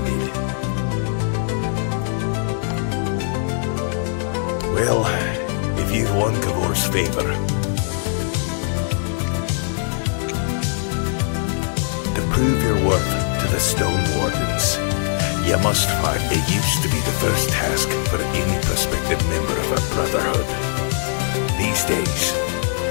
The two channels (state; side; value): silent; right; digital silence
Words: Well, if you've won Kavor's favor, to prove your worth to the StoneWarden's, you must find. It used to be the first task for any prospective member of our brotherhood. These days,